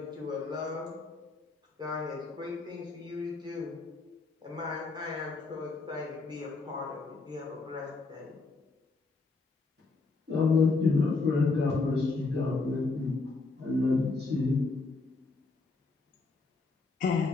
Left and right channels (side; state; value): right; quieter; 3.8 dB